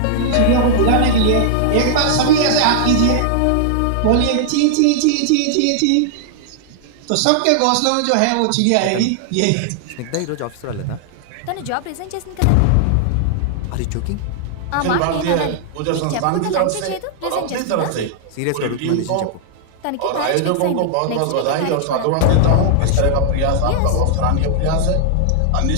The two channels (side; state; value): both; different; correlation -0.01